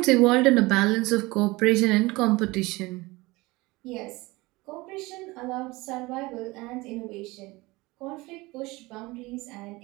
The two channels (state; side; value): quieter; left; 22.1 dB